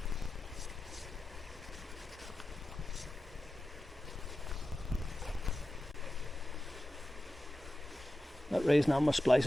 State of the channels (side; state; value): both; normal; correlation 0.93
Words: That raising on my